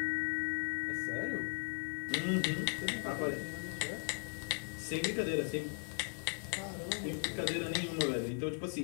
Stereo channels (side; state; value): right; silent; 53 dB below the other